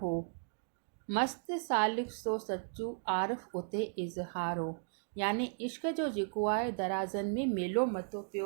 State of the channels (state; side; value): silent; left; digital silence